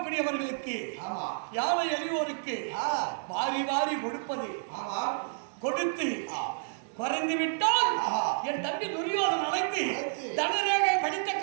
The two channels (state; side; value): silent; left; digital silence